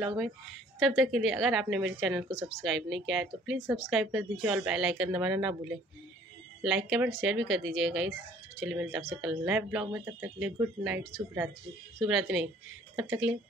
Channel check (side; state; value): both; normal; correlation 0.56